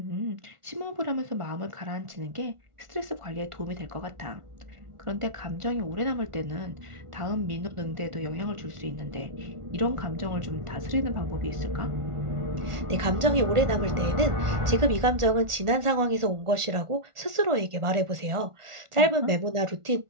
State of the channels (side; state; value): left; late; 1.4 ms